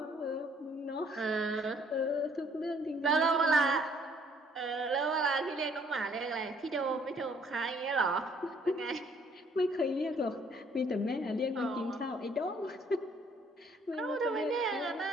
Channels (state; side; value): normal; both; correlation 0.63